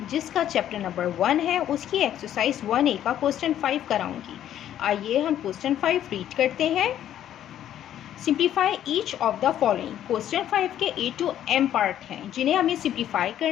जिसका चैप्टर नंबर 1 है उसकी एक्सरसाइज 1A का क्वेश्चन 5 कराऊंगी। आइए हम क्वेश्चन 5 रीड करते हैं। Simplify each of the following. Question 5 के A to M पार्ट हैं जिन्हें हमें सिंप्लीफाई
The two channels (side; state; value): right; quieter; 11.2 dB